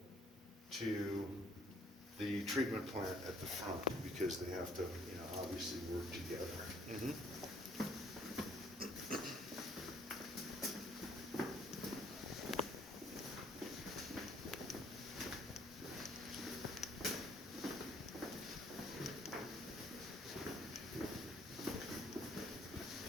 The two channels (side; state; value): both; normal; correlation 0.62